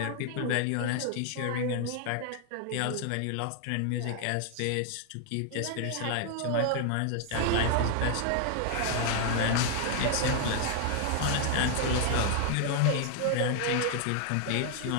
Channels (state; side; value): different; both; correlation 0.00